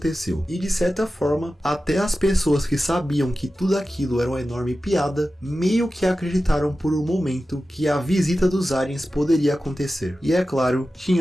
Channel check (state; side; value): normal; both; correlation 0.94